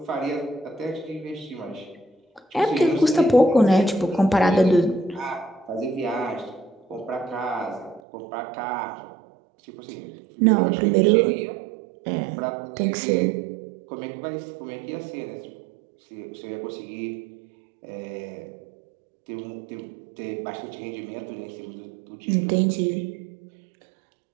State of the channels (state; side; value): drops out; left; at 8.0 s